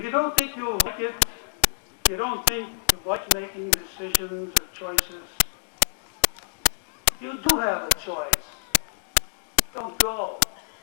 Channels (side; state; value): right; silent; 60 dB below the other